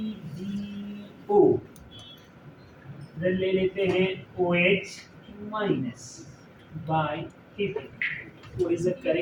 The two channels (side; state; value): both; identical; correlation 1.00